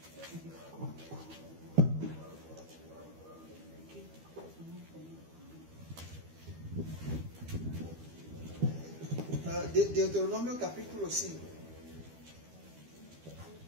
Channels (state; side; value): late; left; 12 ms